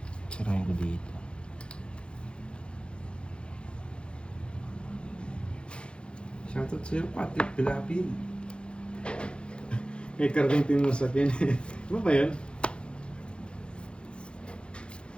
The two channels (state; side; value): late; right; 0.055 ms